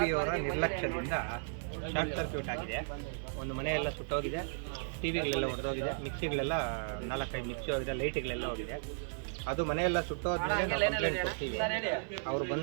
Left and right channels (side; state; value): left; silent; digital silence